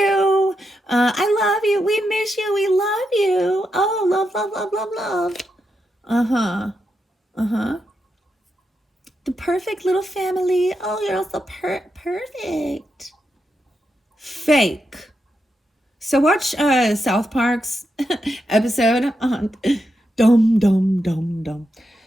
I love you. We miss you. We love you. Oh, love, love, love, love, love. Uh-huh. Uh-huh. The perfect little family. Oh, you're all so perfect. Fake. So watch South Park's episode on Dum Dum Dum Dum.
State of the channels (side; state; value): both; normal; correlation 0.85